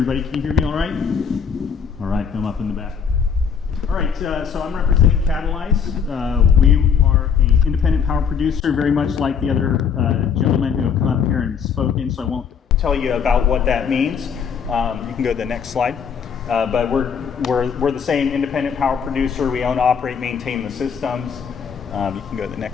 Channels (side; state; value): right; quieter; 6.8 dB